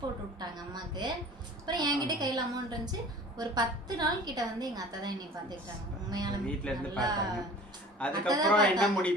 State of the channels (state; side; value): normal; both; correlation 0.44